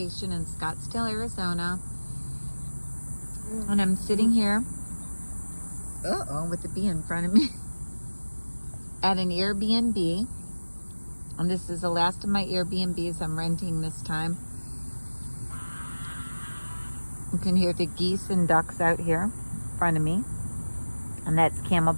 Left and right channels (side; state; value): both; inverted; correlation -1.00